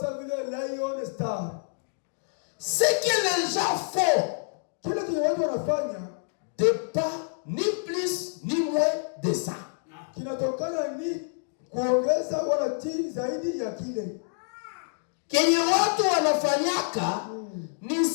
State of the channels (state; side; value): silent; right; digital silence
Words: sawa vile Lion Star. Ce que les gens font, kile kile watu wanafanya, de pas ya kile. Kenye watu wanafanyaka ni